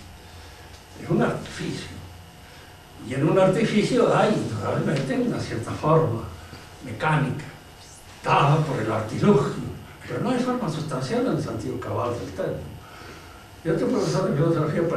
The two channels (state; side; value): identical; both; correlation 1.00